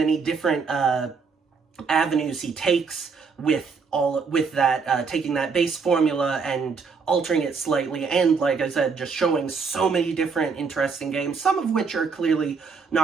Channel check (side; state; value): left; quieter; 5.1 dB